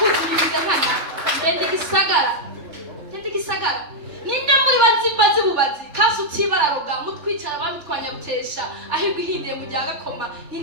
nkana ndende gisagara ninde muri bazi bubazi kasi utibararoga mutwicara bamitwanya rutesha ahirwa ihindiye mu rya gakoma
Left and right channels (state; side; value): late; left; 3.4 ms